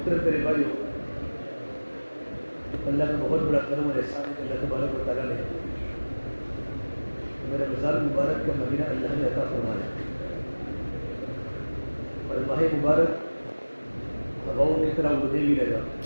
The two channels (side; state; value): both; inverted; correlation -1.00